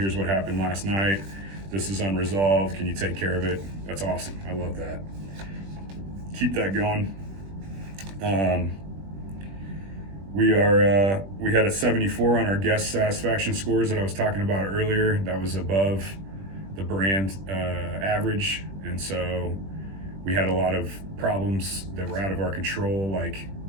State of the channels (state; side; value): late; left; 21 ms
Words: what happened last night. This is unresolved. Can you take care of it? That's awesome. I love that. Keep that going. We had a 74 on our guest satisfaction scores that I was talking about earlier. That was above the brand average, and so we had a lot of problems that were out of our control, like